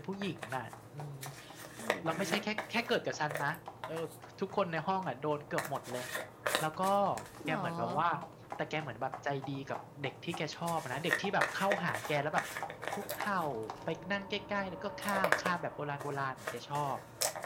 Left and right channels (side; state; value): both; identical; correlation 1.00